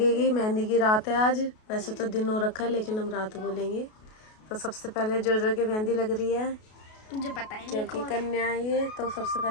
मेहंदी की रात है आज। वैसे तो दिन हो रखा है लेकिन हम रात बोलेंगे। तो सबसे पहले जो की मेहंदी लग रही है, मुझे पता ही नहीं क्योंकि कन्या है ये, तो सबसे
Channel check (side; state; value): right; late; 33 ms